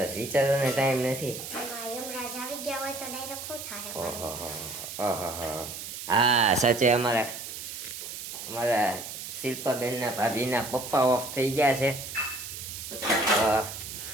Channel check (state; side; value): noise; right; hiss, 9 dB below the sound